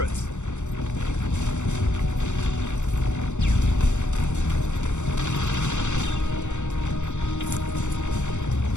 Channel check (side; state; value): right; late; 0.84 ms